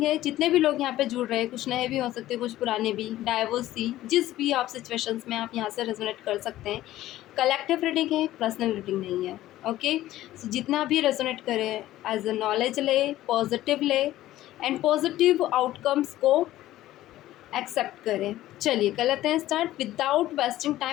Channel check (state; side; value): quieter; right; 14.8 dB